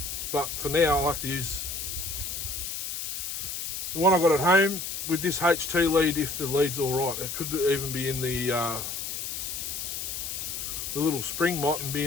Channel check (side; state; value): left; noise; hiss, 5 dB below the sound